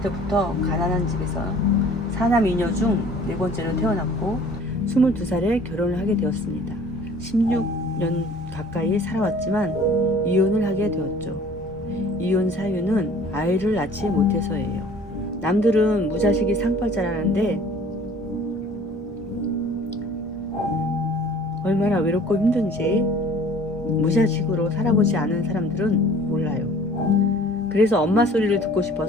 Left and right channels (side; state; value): both; normal; correlation 0.50